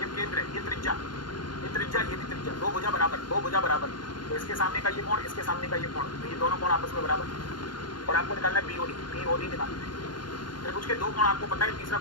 केंद्र है, ये त्रिज्या, ये भी त्रिज्या, दो भुजा बराबर, तो इसके सामने का ये कोण, इसके सामने का ये कोण, तो ये दोनों कोण आपस में बराबर। और आपको निकालना है BOD निकालना है। त्रिभुज के दो कोण आपको पता है, तीसरा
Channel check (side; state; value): right; late; 0.71 ms